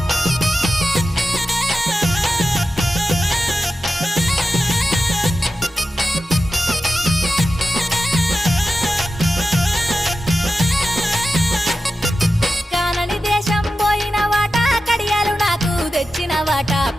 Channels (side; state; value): both; normal; correlation 0.92